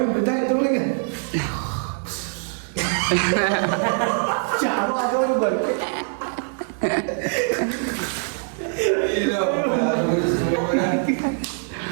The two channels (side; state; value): left; silent; 61 dB below the other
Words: ತಗೊಳ್ಳಿಗೆ ಚಾಲು ಆಗೋರು ಬರ್ಕೆ